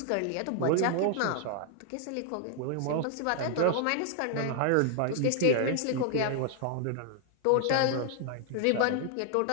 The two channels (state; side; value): different; both; correlation 0.00